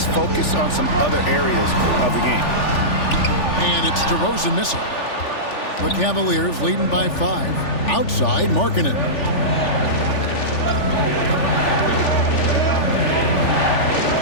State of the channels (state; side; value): late; right; 3.4 ms